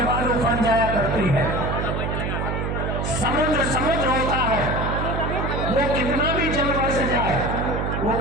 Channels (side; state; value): right; noise; hum, 1 dB below the sound